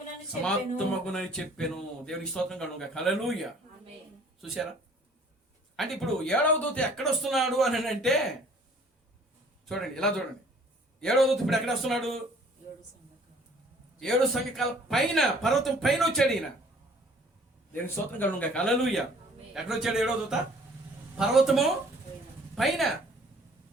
చెప్పెను. దేవుని స్తోత్రం కలుగును గాక. హల్లెలూయా. చూసారా? అంటే ఇప్పుడు 7వ దూత ఎక్కడ వస్తున్నాడు అని అంటే చూడండి, ఇలా చూడండి. 7వ దూత ఇప్పుడు ఎక్కడ వస్తున్నాడు? 7 సంఘకాల పైన, పర్వతం పైన వచ్చాడు ఈయన. దేవుని స్తోత్రం కలుగును గాక. హల్లెలూయా. ఎక్కడ వచ్చాడు 7వ దూత? పర్వతము పైన.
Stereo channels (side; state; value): both; normal; correlation 0.55